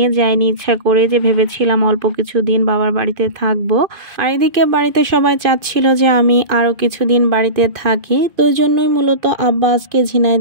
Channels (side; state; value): left; late; 2.5 ms